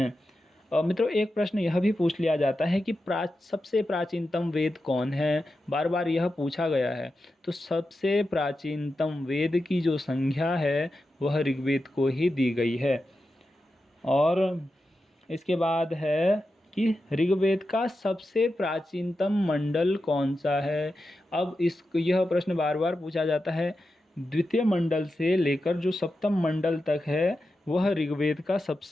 मित्रों एक प्रश्न यह भी पूछ लिया जाता है कि सबसे प्राचीनतम वेद कौन है? बार बार यह पूछा गया है। तो सबसे प्राचीनतम वेद की जो संज्ञा है वह ऋग्वेद को ही दी गई है। और इसके बाद है कि ऋग्वेद का सबसे प्राचीनतम मंडल कौन सा है? अब यह प्रश्न बार बार पूछा जाता है। द्वितीय मंडल से लेकर जो सप्तम मंडल तक है वह ऋग्वेद का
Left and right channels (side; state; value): both; normal; correlation 0.90